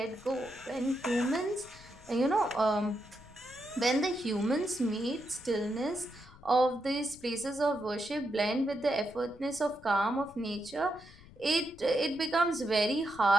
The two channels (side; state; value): left; noise; rumble, 22 dB below the sound